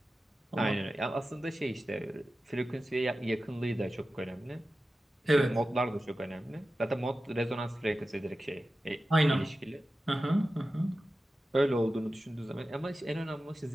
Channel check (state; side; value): normal; both; correlation 0.94